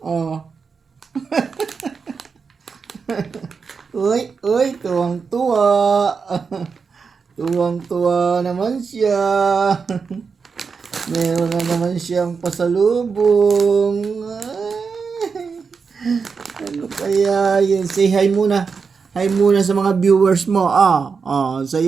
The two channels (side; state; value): left; quieter; 5.4 dB